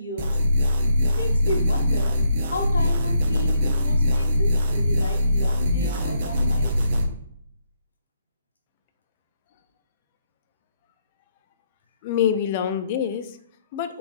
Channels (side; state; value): both; inverted; correlation -0.76